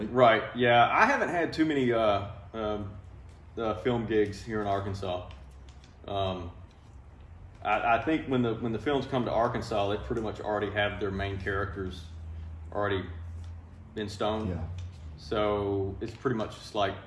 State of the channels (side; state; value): both; identical; correlation 1.00